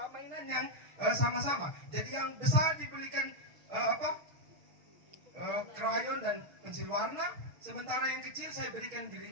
mainan yang sama-sama. Jadi yang besar dibelikan krayon dan pensil warna, sementara yang kecil saya berikan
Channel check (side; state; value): left; late; 6.9 ms